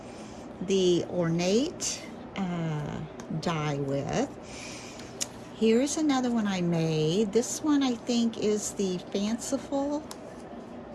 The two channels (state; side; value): identical; both; correlation 1.00